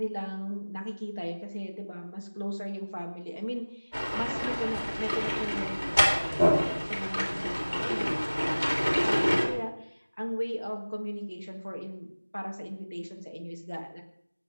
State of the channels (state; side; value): inverted; both; correlation -1.00